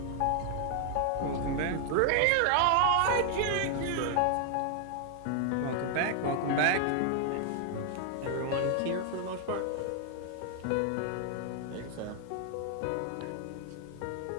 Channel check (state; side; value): different; both; correlation 0.00